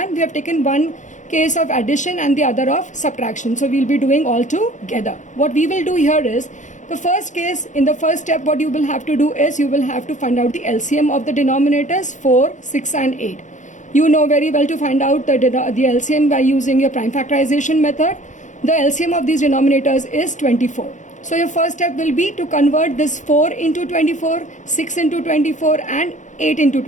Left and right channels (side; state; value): right; late; 0.36 ms